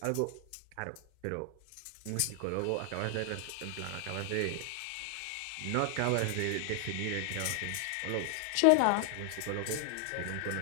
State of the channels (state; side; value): different; both; correlation 0.00